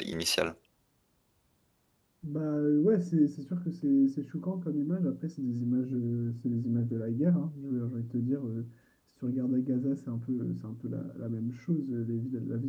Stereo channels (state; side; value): identical; both; correlation 1.00